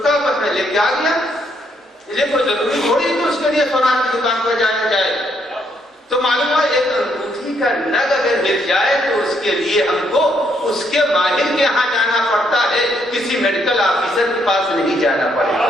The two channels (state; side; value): normal; both; correlation 0.73